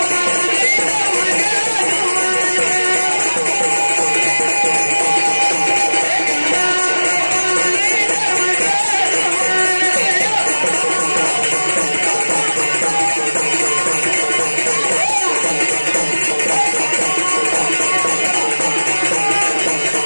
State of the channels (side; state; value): both; inverted; correlation -1.00